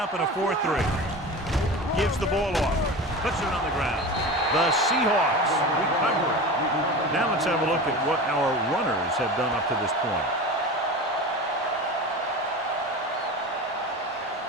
in a 4-3. Gives the ball off. Puts it on the ground. The Seahawks recover it. Now let's have a look at what our runners have done up to this point.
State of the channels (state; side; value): normal; both; correlation 0.31